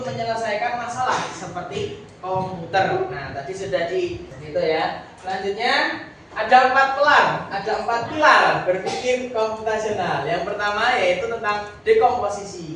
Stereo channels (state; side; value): identical; both; correlation 1.00